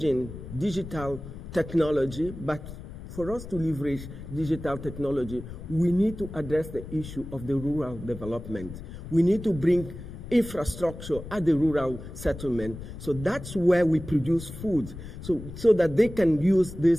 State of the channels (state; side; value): noise; left; rumble, 12 dB below the sound